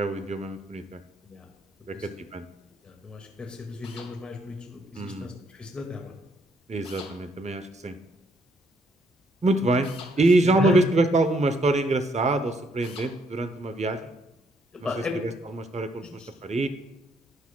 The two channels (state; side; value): normal; both; correlation 0.71